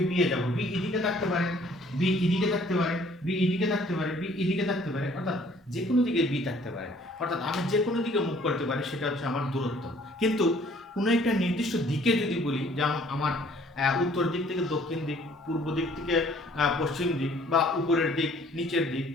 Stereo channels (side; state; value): both; normal; correlation 0.58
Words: এ যাব, বি এদিকে থাকতে পারে, বি এদিকে থাকতে পারে, বি এদিকে থাকতে পারে, বি এদিকে থাকতে পারে, অর্থাৎ যে কোনো দিকে বি থাকতে পারে, অর্থাৎ আমি যে কোনো দিকে মুভ করতে পারি, সেটা হচ্ছে আমার দূরত্ব। কিন্তু কোনো একটা নির্দিষ্ট দিকে যদি বলি, যেমন আমার উত্তর দিক থেকে দক্ষিণ দিক, পূর্ব দিক থেকে পশ্চিম দিক, বা উপরের দিক, নিচের দিক,